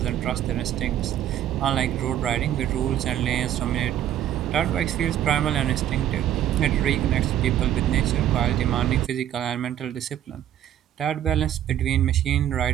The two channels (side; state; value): left; quieter; 11.3 dB